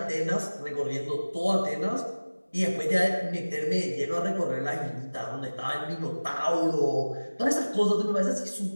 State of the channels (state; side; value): inverted; both; correlation -1.00